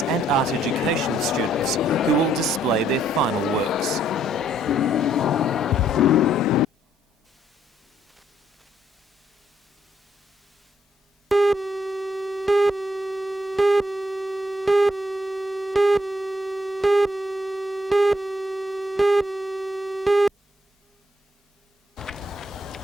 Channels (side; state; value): both; normal; correlation 0.71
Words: and Art Education students, who will display their final works.